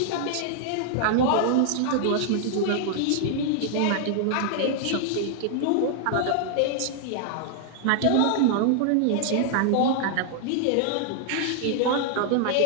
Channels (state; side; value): different; both; correlation 0.00